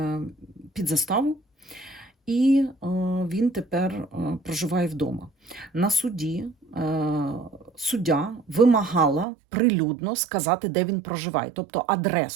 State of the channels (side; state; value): left; drops out; at 9.2 s